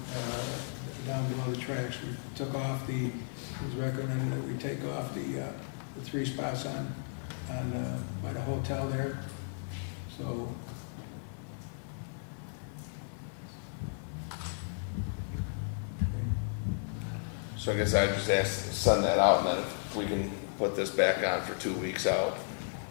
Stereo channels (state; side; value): silent; right; digital silence